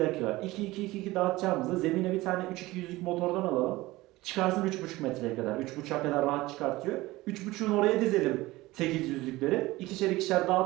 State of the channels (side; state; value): left; quieter; 19.1 dB